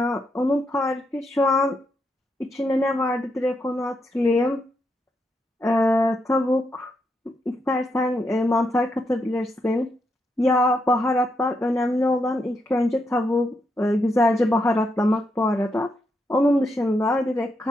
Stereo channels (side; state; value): both; normal; correlation 0.81